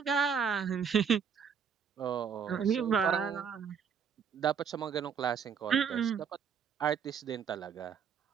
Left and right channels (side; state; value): left; quieter; 7.0 dB